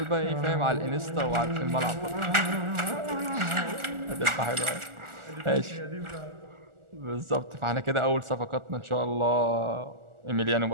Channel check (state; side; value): late; left; 1.4 ms